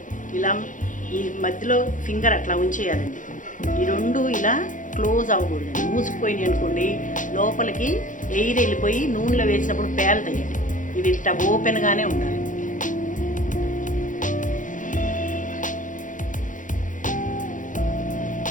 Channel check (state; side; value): late; right; 0.37 ms